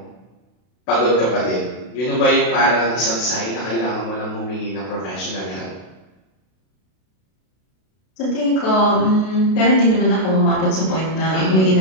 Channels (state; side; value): late; right; 32 ms